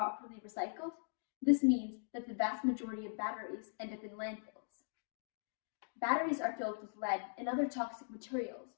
recycled? This means that the vast majority of batteries end up in landfills. Batteries are filled with lead and other toxic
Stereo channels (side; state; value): right; silent; digital silence